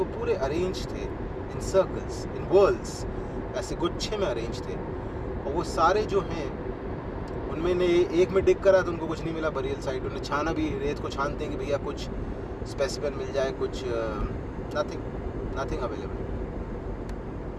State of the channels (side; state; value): both; identical; correlation 1.00